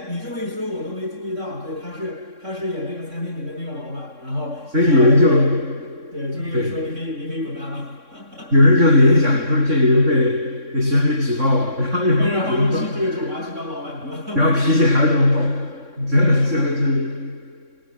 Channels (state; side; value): late; left; 3.6 ms